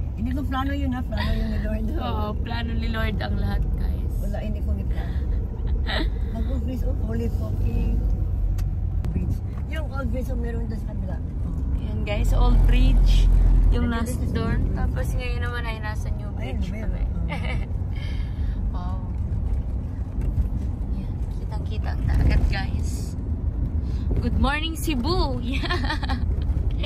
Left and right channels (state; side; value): identical; both; correlation 1.00